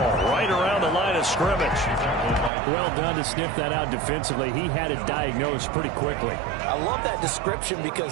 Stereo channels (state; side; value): drops out; left; at 2.5 s